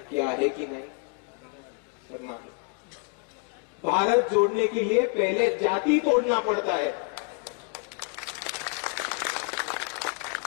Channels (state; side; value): quieter; right; 36.1 dB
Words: आहे की नाही. तर नाही. भारत जोड़ने के लिए पहले जाति तोड़ना पड़ता है